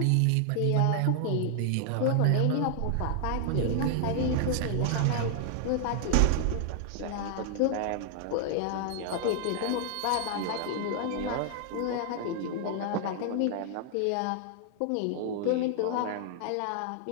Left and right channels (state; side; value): different; both; correlation 0.00